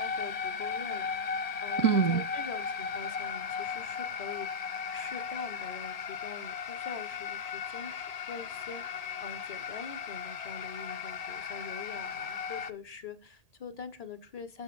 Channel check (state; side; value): late; right; 1.8 ms